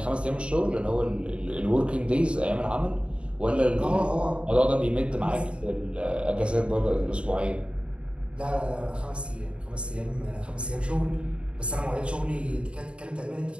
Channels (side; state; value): left; late; 0.057 ms